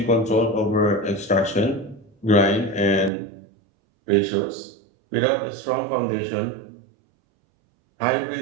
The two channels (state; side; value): drops out; left; at 3.1 s